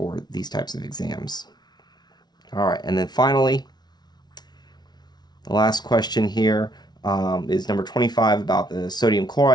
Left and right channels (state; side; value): late; right; 0.20 ms